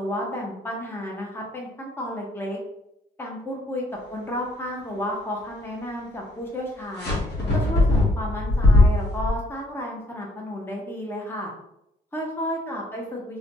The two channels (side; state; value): both; normal; correlation 0.65